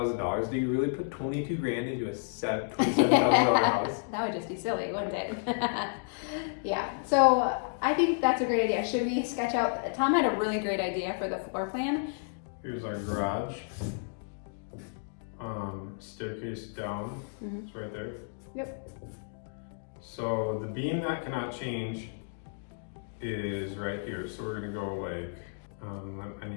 Do you really put 22 grand into a $27,000 house? That would just be silly, wouldn't it? Yeah. So I think that's a great idea. Should we sketch out? Tom had a really great idea for the floor plan. Here's our garage. Staircase down. Mhm. It's right there. Yep. So the beam that cannot change is right here. So we're gonna go like, I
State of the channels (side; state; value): right; silent; digital silence